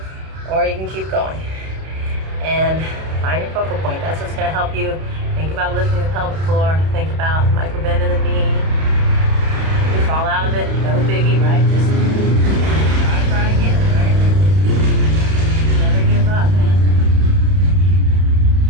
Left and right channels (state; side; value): late; left; 32 ms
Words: Or you can keep going. And find your focal point. That's what's going to help you. Think about lifting the pelvic floor. Think about micro bend in the knee. You can fall out of it. No biggie, right? Just try again, right? Never give up, man.